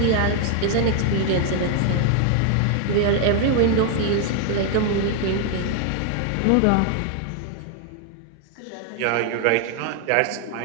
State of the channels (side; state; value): both; different; correlation 0.00